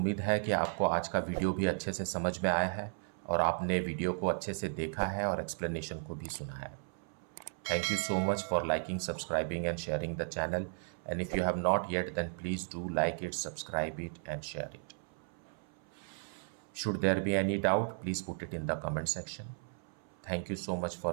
है कि आपको आज का वीडियो भी अच्छे से समझ में आया है और आपने वीडियो को अच्छे से देखा है और एक्सप्लेनेशन को भी सुना है। Thank you so much for liking, subscribing and sharing the channel. And if you have not yet, then please do like it, subscribe it and share it. Should there be any doubt, please put it in the comment section. Thank you so much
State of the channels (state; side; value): silent; left; 54 dB below the other